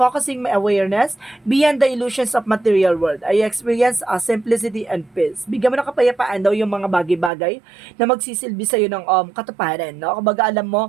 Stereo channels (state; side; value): drops out; left; at 7.3 s